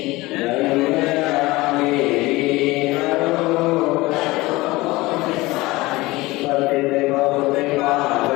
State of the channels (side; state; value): right; quieter; 20.6 dB